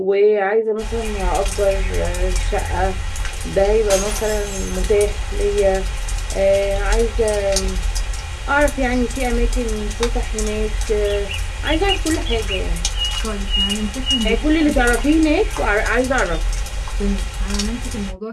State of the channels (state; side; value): identical; both; correlation 1.00